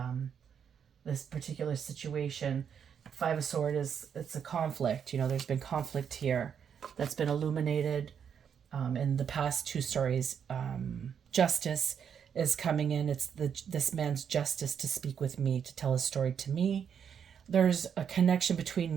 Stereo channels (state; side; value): quieter; left; 7.7 dB